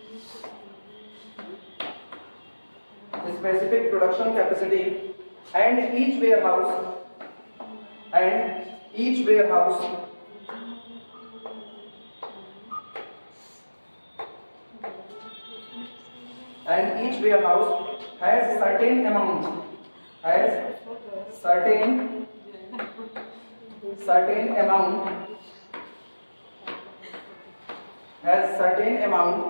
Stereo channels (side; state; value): both; inverted; correlation -1.00